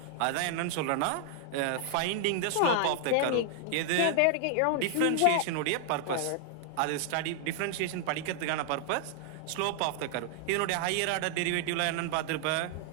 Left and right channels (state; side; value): different; both; correlation -0.01